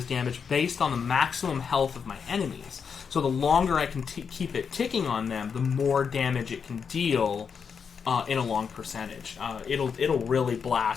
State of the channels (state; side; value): quieter; right; 6.4 dB